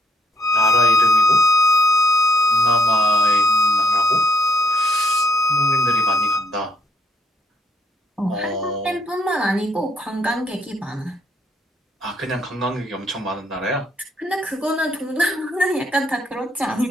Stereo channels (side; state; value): both; normal; correlation 0.71